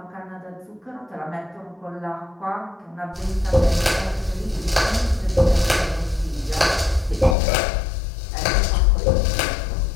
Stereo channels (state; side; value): drops out; right; at 7.4 s